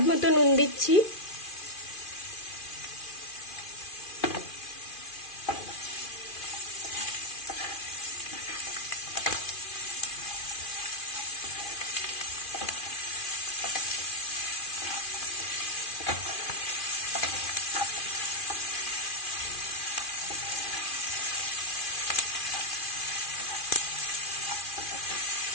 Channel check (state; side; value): late; right; 2.4 ms